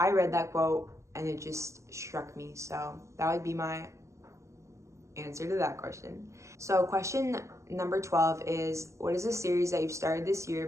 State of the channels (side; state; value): left; late; 0.14 ms